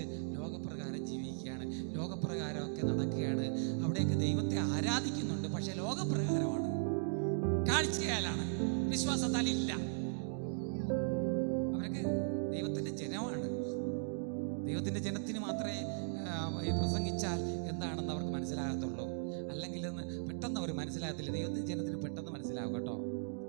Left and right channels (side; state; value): left; silent; digital silence